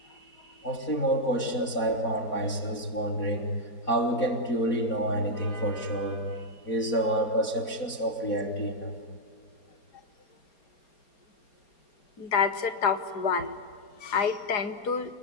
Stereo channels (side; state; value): right; late; 4.3 ms